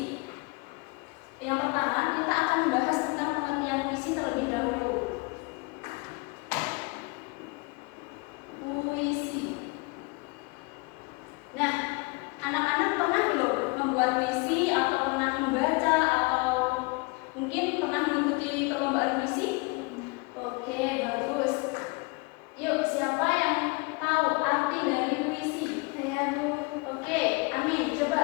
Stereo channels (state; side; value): quieter; right; 28.0 dB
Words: Yang pertama, kita akan membahas tentang pengertian puisi terlebih dahulu. Puisi. Nah, anak-anak pernah belum membuat puisi atau pernah membaca atau mungkin pernah mengikuti perlombaan puisi? Oke, bagus. Yuk, siapa yang tahu arti dari puisi? Saya, Bu. Oke, Amin, coba.